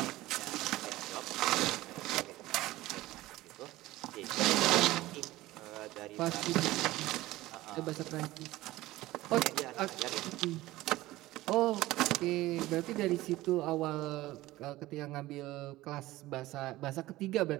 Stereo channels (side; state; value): left; quieter; 17.5 dB